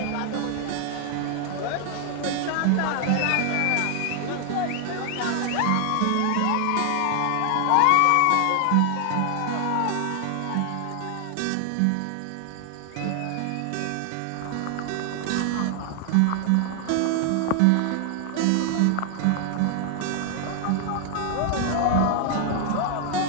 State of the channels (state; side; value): different; both; correlation 0.00